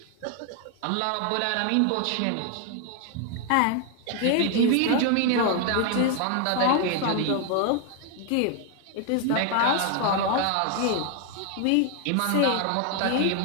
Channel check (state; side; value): different; both; correlation 0.00